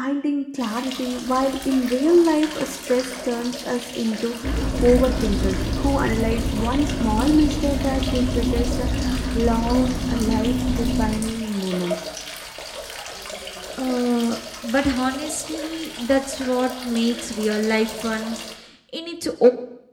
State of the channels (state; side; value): identical; both; correlation 1.00